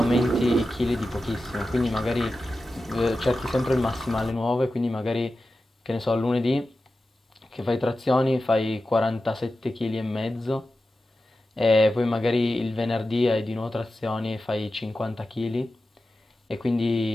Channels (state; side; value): normal; both; correlation 0.93